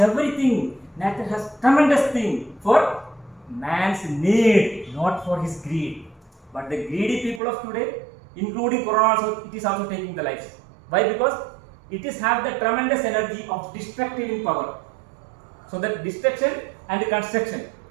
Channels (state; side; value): drops out; left; at 7.4 s